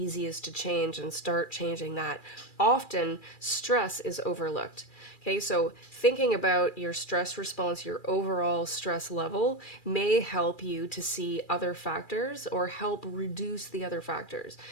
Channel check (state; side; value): late; right; 2.4 ms